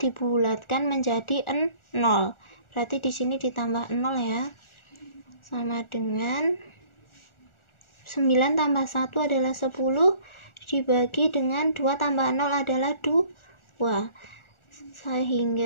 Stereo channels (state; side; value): late; right; 1.4 ms